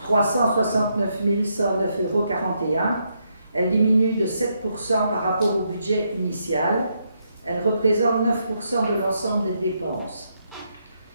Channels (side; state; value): both; inverted; correlation -0.78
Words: 369 109,41 euros, elle diminue de 7% par rapport au budget initial. Elle représente 9% de l'ensemble des dépenses.